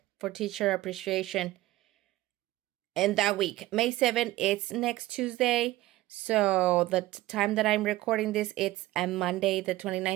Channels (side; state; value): left; quieter; 17.0 dB